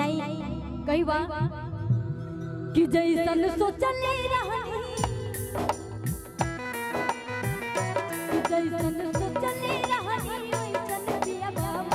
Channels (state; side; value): identical; both; correlation 1.00